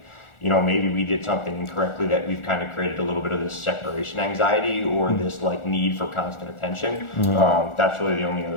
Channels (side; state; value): right; late; 1.4 ms